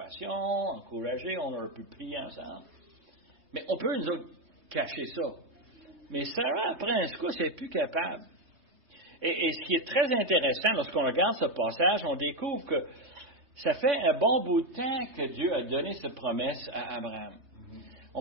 encourager, on aurait pu prier ensemble. Mais on peut, nous autres, cacher ça. Mais Sarah, après un secousse, elle n'est plus capable. Et ce qui est très intéressant, lorsqu'on regarde ce passage, on découvre que ça fait un bon bout de temps que Dieu a donné cette promesse à Abraham.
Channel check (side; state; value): left; late; 3.2 ms